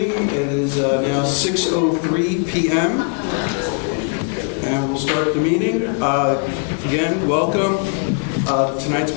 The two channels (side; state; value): right; quieter; 39.5 dB